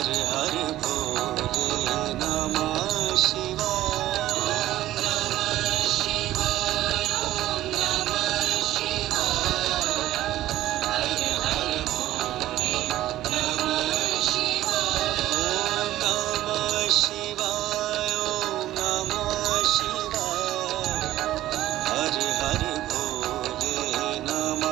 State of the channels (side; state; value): left; quieter; 14.5 dB